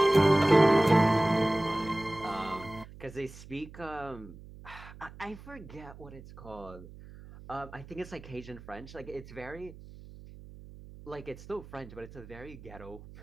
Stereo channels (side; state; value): right; noise; hum, 17 dB below the sound